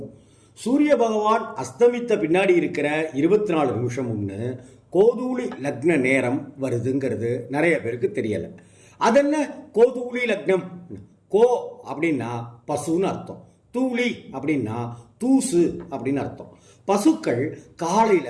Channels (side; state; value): both; identical; correlation 1.00